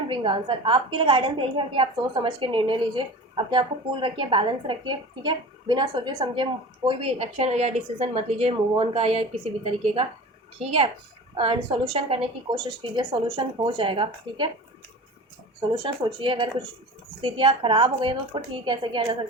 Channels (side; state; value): both; normal; correlation 0.35